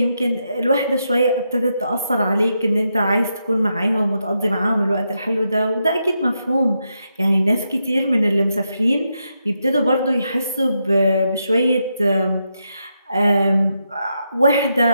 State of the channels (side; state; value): both; inverted; correlation -0.83